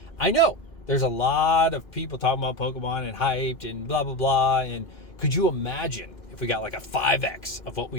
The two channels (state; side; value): late; right; 2.4 ms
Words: I know there's a lot of people talking about Pokemon and hyped and blah, blah, blah. And could you imagine if we got like a 5X of what